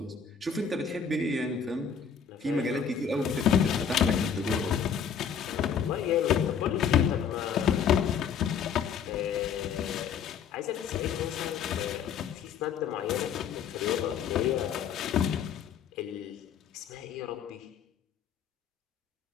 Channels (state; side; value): quieter; right; 7.2 dB